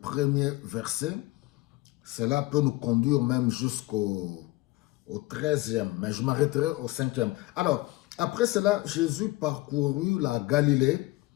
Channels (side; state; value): right; quieter; 20.0 dB